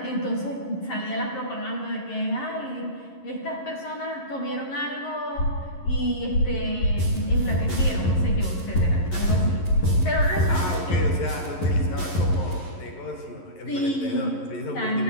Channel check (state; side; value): late; right; 11 ms